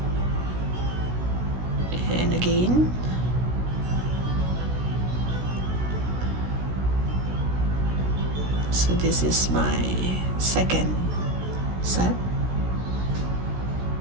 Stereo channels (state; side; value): late; left; 16 ms